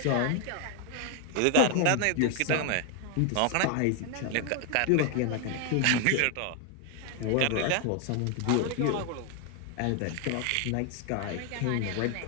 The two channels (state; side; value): different; both; correlation 0.00